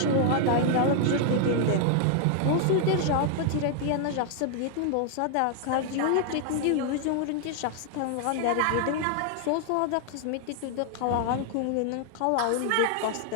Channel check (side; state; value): both; different; correlation 0.00